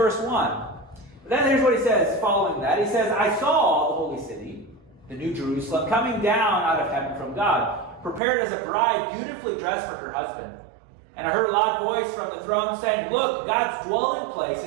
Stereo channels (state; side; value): drops out; left; at 8.2 s